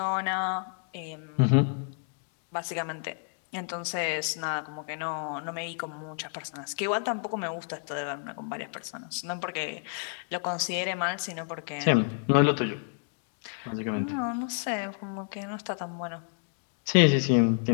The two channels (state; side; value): silent; right; 58 dB below the other